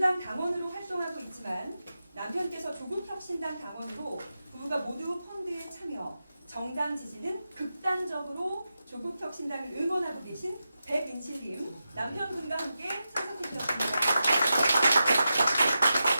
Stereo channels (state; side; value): inverted; both; correlation -0.90